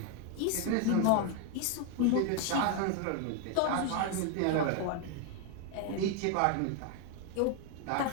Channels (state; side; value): different; both; correlation 0.01